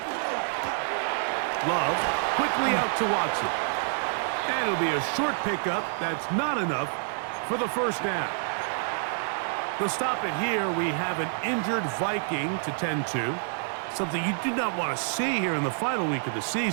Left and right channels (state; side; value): silent; left; digital silence